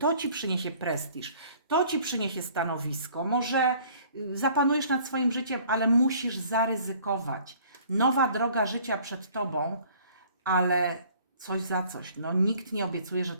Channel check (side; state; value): both; inverted; correlation -0.55